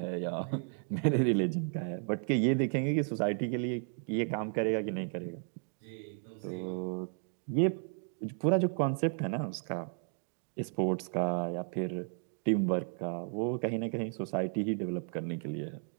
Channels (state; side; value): silent; left; 55 dB below the other